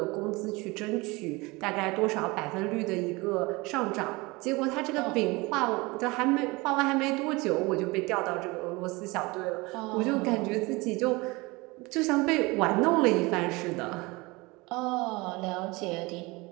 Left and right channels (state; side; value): quieter; left; 24.1 dB